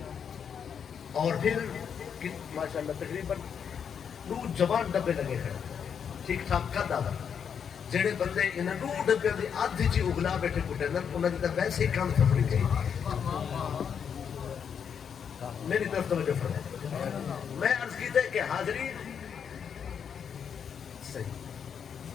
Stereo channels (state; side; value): quieter; right; 7.4 dB